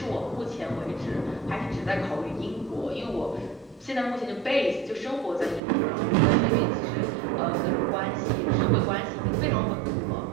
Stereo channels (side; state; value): left; drops out; at 5.6 s